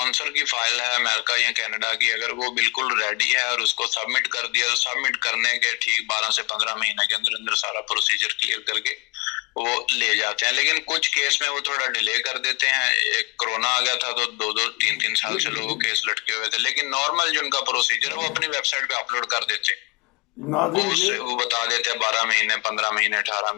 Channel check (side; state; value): right; quieter; 27.6 dB